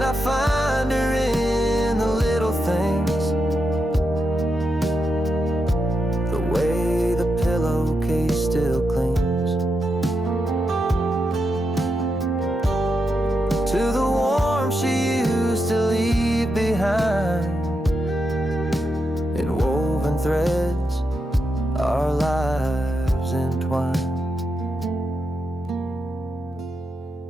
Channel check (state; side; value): normal; both; correlation 0.85